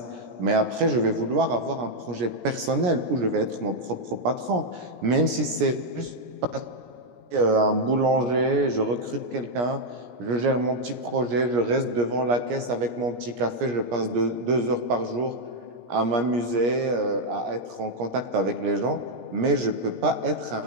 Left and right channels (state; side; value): late; left; 17 ms